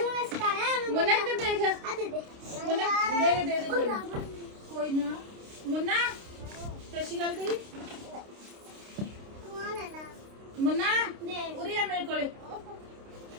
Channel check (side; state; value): left; late; 29 ms